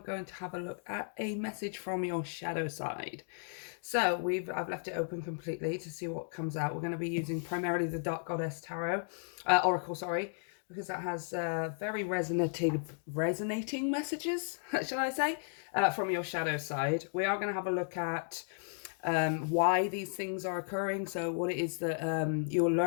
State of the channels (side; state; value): right; silent; digital silence